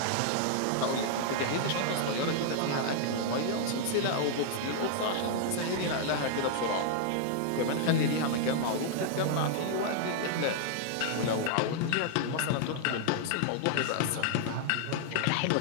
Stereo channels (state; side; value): different; both; correlation -0.01